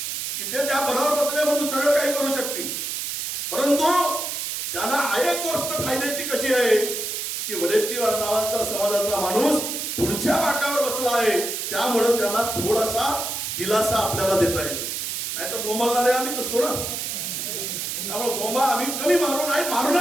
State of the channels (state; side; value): noise; right; hiss, 3 dB below the sound